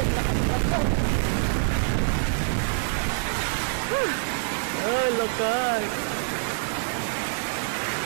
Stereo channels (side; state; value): left; silent; 57 dB below the other